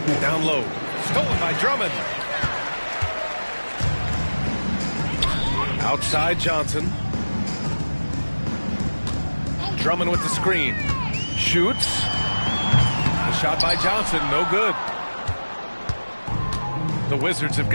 Down low. Stolen by Drummond. Outside Johnson. Drummond with the screen. Shoots. The shot by Johnson, no good. The Wizards have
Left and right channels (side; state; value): both; inverted; correlation -1.00